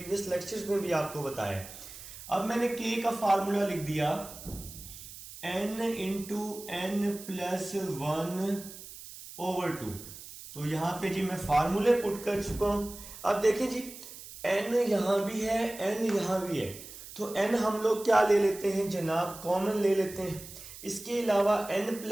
लेक्चर्स में भी आपको बताया। अब मैंने k का फार्मूला लिख दिया, n इंटू n + 1/2। तो यहां पे जी मैं फार्मूले पुट कर चुका हूं। अब देखें जी, n यहां भी है, n यहां भी है, तो n हम लोग क्या ले लेते हैं जनाब, कॉमन ले लेते हैं। इसके अलावा n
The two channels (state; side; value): noise; right; hiss, 14 dB below the sound